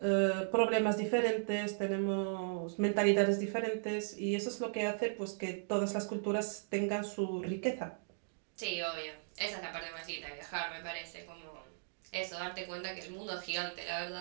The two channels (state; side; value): silent; left; digital silence